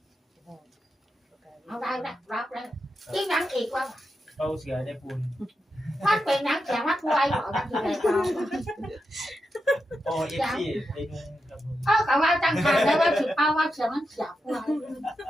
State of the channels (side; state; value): both; normal; correlation 0.87